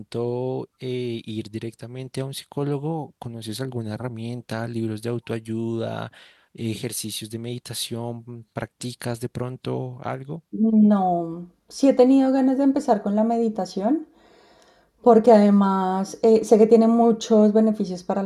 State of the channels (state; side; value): identical; both; correlation 1.00